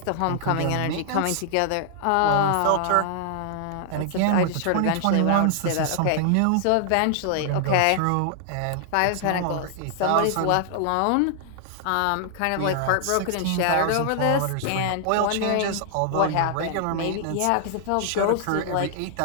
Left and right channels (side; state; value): both; different; correlation 0.00